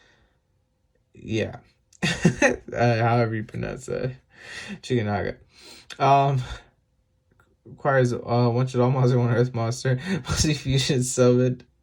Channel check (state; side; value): identical; both; correlation 1.00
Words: Yeah. However you pronounce that. Chicken Naga. Requires one Shaddoll monster, one Earth monster. Must be fusion summoned.